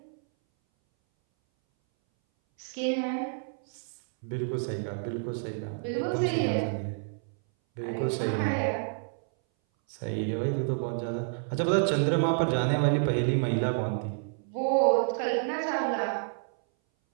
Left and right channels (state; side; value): silent; left; 59 dB below the other